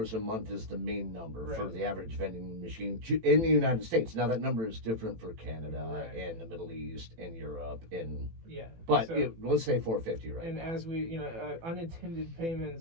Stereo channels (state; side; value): late; left; 18 ms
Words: a month is the mean number for the average vending machine in the United States. Now that number is different for Canada and the Middle East and Europe but let's say 450, right? And now. As we unattended